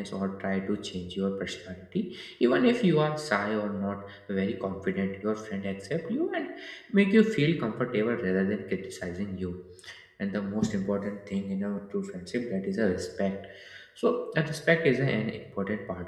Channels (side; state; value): both; identical; correlation 1.00